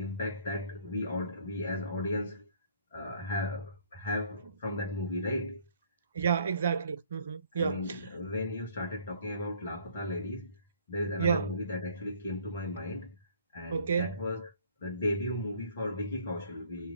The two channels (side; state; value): both; inverted; correlation -0.57